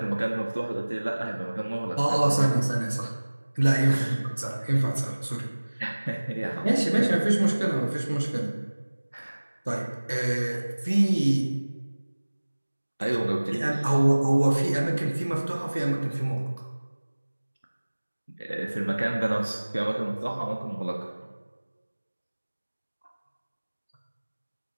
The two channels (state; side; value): inverted; both; correlation -1.00